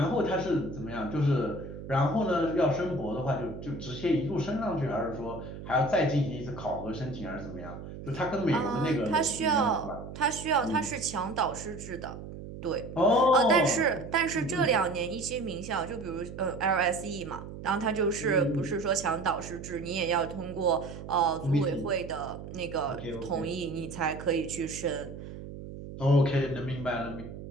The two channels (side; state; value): right; noise; hum, 11 dB below the sound